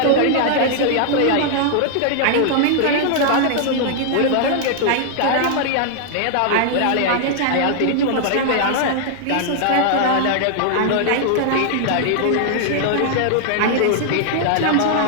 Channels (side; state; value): both; different; correlation -0.01